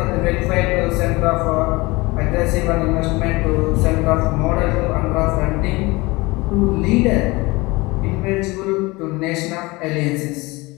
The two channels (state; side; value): quieter; right; 23.0 dB